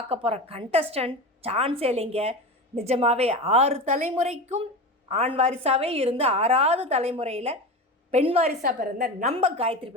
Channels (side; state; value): both; normal; correlation 0.26